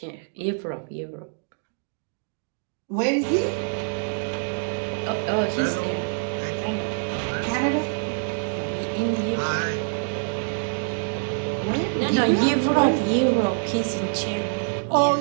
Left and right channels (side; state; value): left; silent; digital silence